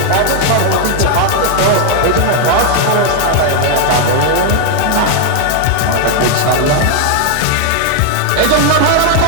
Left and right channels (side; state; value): both; different; correlation 0.00